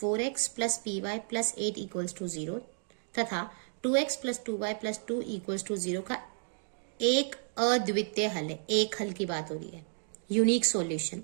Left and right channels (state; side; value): silent; left; digital silence